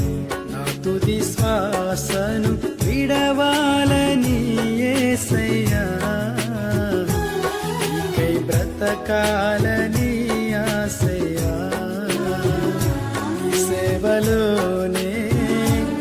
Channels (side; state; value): both; identical; correlation 1.00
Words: నా తుది శ్వాసను విడవాలని యేసయ్యా, నీకై బ్రతకాలని ఆశయ్యా. సేవలోనే